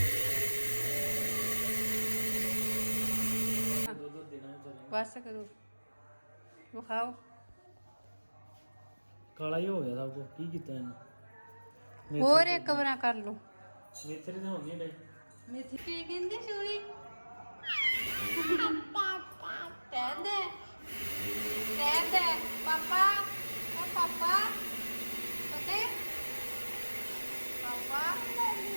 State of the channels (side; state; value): both; inverted; correlation -1.00